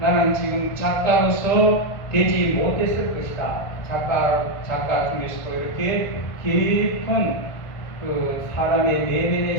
지금 작가로서 되지 못했을 것이다. 작가 중에서도 이렇게 깊은 사람의 내면의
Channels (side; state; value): right; late; 1.5 ms